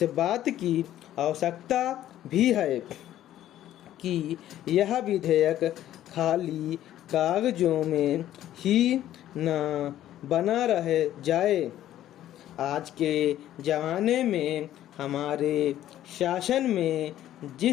बात की आवश्यकता भी है कि यह विधेयक खाली कागजों में ही न बना रह जाए। आज के ज़माने में हमारे शासन में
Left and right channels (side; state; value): right; quieter; 12.6 dB